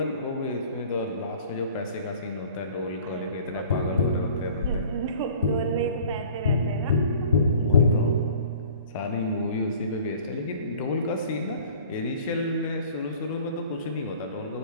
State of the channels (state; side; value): inverted; both; correlation -0.47